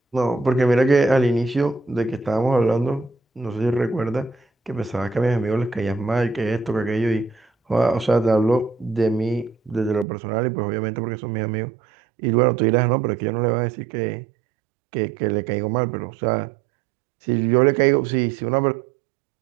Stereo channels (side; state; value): left; drops out; at 10.1 s